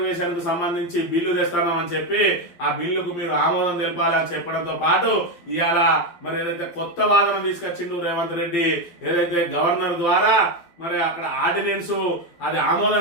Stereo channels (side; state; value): right; late; 12 ms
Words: కు సంబంధించి బిల్లు తెస్తున్నామని చెప్పి ఆ బిల్లుకు మీరు ఆమోదం తెలపాలని చెప్పడంతో పాటు ఇవాళ మరి ఏదైతే కొత్త వాదన తీసుకొచ్చిండు రేవంత్ రెడ్డి, ఏదైతే గవర్నర్ ద్వారా మరి అక్కడ ఆర్డినెన్స్ అది